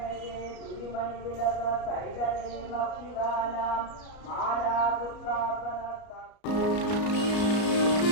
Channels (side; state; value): right; late; 33 ms